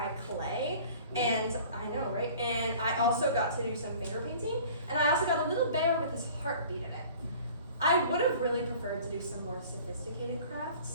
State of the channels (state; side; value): inverted; both; correlation -0.47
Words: clay, and I know, right? And I also got to do some finger painting, and I also got a little bear with his heartbeat in it. I would have really preferred to do some more sophisticated